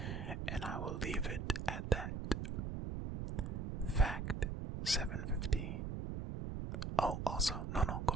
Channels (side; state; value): right; noise; rumble, 4 dB below the sound